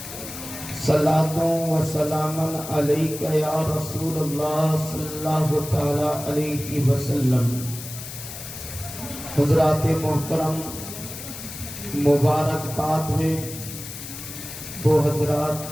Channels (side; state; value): left; noise; hiss, 11 dB below the sound